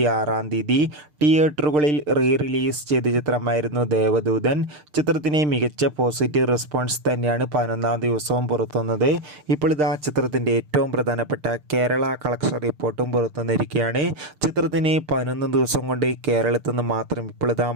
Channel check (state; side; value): late; left; 6.6 ms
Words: തീയതി തിയേറ്ററുകളിൽ റിലീസ് ചെയ്ത ചിത്രമായിരുന്നു ദേവദൂതൻ. ചിത്രത്തിന് മികച്ച പോസിറ്റീവ് റെസ്പോൺസ് തന്നെയാണ് 11-ാം ദിവസവും പുറത്തുവന്നത്. ഇപ്പോൾ ഇതാ ചിത്രത്തിൻ്റെ ഏറ്റവും പ്രധാനപ്പെട്ട കേരള കളക്ഷൻ റിപ്പോർട്ടും പുറത്തുവന്നിരിക്കുകയാണ്. ചിത്രത്തിന് 11 ദിവസം കൊണ്ട് കേരളത്തിൽ നിന്ന് മാത്രം ഇപ്പോൾ ഇതാ